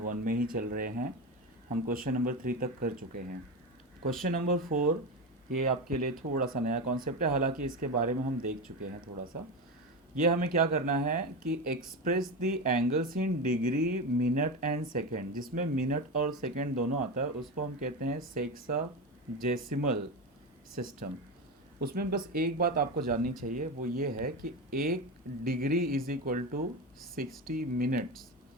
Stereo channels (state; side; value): normal; both; correlation 0.18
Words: में ही चल रहे हैं। हम क्वेश्चन नंबर 3 तक कर चुके हैं। क्वेश्चन नंबर 4 ये आपके लिए थोड़ा सा नया कॉन्सेप्ट है, हालांकि इसके बारे में हम देख चुके हैं थोड़ा सा। ये हमें क्या करना है कि express the angles in degree, minute and second. जिसमें मिनट और सेकेंड दोनों आता है उसको हम कहते हैं सेक्साजेसिमल सिस्टम। उसमें बस एक बात आपको जाननी चाहिए, वो ये है कि 1 degree is equal to 60 minutes